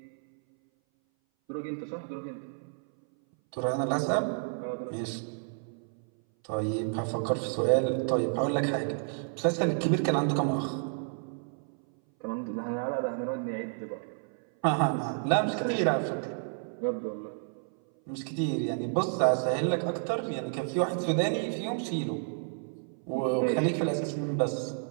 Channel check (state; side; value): silent; left; 57 dB below the other